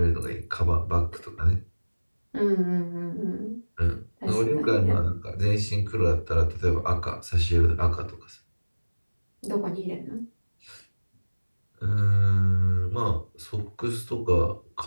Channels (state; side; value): inverted; both; correlation -1.00